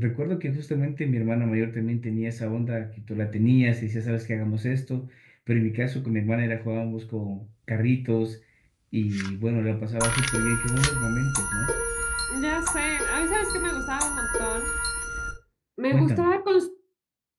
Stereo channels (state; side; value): identical; both; correlation 1.00